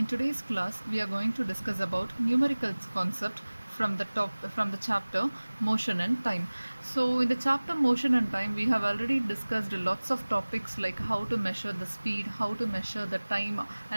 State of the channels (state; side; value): inverted; both; correlation -1.00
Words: today's class we are going to discuss about numerical concept from the chapter motion and time. So in the chapter motion and time we have already discussed lots of topics like how to measure the speed, how to measure the time,